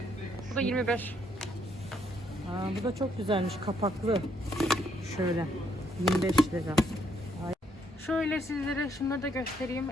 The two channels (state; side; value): normal; both; correlation 0.71